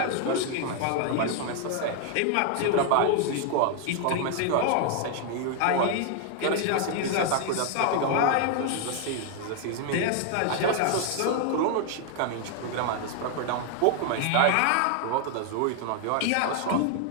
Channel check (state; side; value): different; both; correlation 0.00